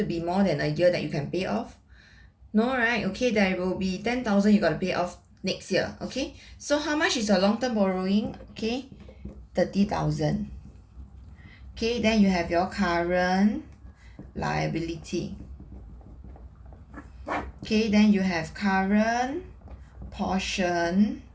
be more than a year that you can pay off? No, right? Okay, there will be 10,000 you got to pay off next year. Okay, so how much is your long-term borrowing? Okay, 30,000. Okay, then you have your current liability. Okay, then you have current portion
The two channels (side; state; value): both; identical; correlation 1.00